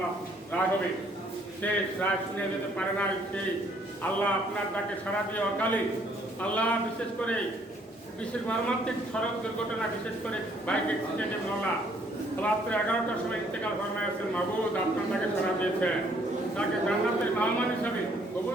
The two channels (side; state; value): both; normal; correlation 0.64